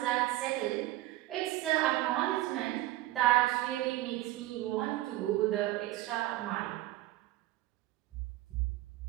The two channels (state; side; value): quieter; left; 16.6 dB